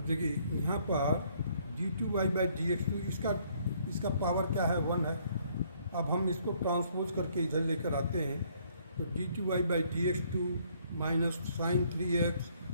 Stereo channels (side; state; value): both; inverted; correlation -0.65